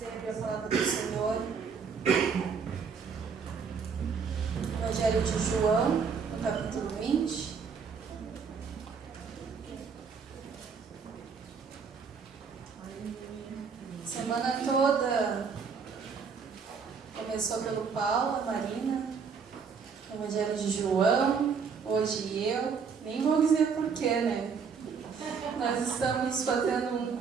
a abrir a palavra do Senhor. Evangelho de João, no capítulo 20. Semana toda começou pelo Paulo, a Marina, Evangelho de João, hoje eu, nem vou dizer porquê, né? Nós estamos fazendo um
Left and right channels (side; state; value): left; quieter; 5.9 dB